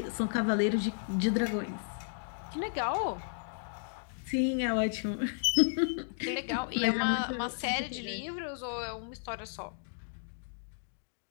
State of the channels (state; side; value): silent; right; digital silence